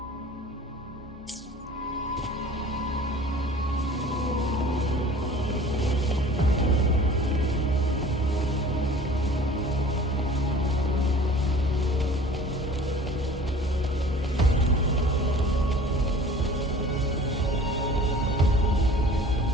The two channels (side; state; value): both; normal; correlation 0.45